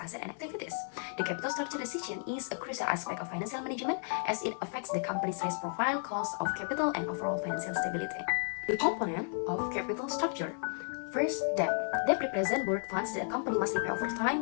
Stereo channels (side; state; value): right; silent; 56 dB below the other